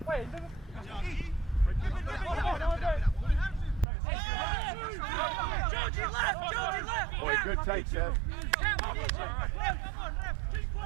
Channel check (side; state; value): left; drops out; at 3.9 s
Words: Boy, good take, Seth.